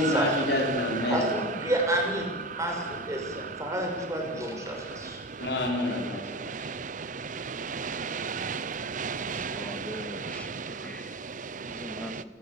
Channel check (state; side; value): normal; both; correlation 0.25